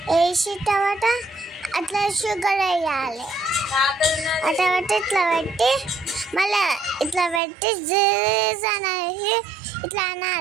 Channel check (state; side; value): drops out; left; at 7.4 s